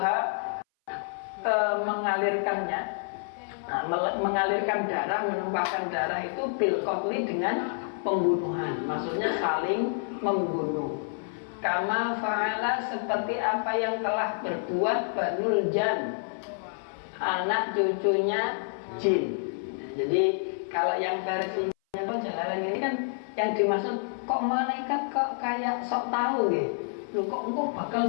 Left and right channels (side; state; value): right; silent; 57 dB below the other